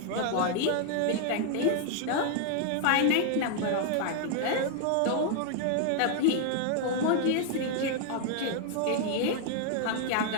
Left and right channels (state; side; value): different; both; correlation 0.00